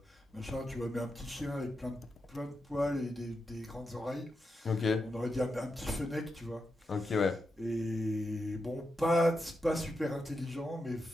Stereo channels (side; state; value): both; normal; correlation 0.87